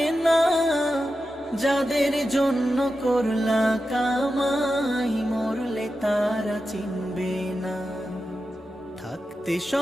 না। যাদের জন্য করলা কামাই মরলে তারা চিনবে না। থাকতে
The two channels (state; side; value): normal; both; correlation 0.91